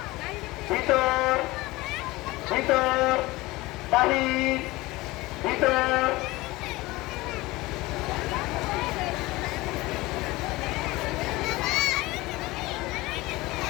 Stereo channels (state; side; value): quieter; right; 20.3 dB